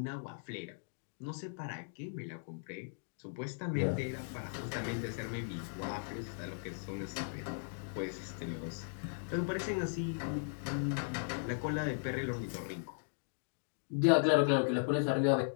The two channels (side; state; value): right; silent; digital silence